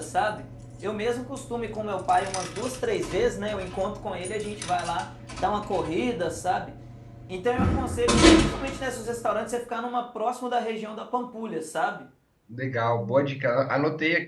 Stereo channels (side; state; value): both; identical; correlation 1.00